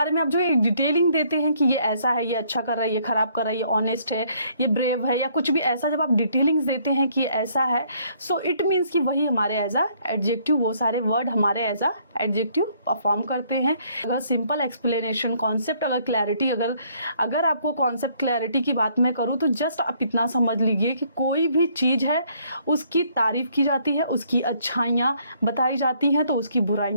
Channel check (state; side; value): inverted; both; correlation -0.65